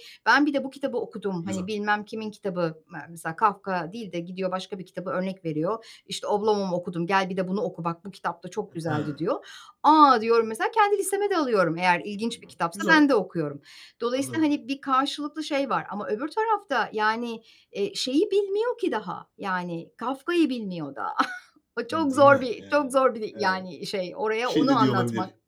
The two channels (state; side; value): identical; both; correlation 1.00